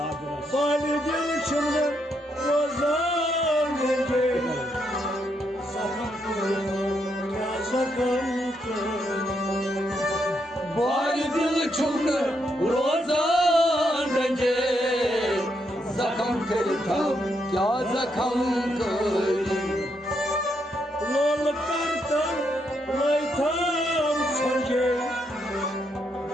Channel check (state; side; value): normal; both; correlation 0.78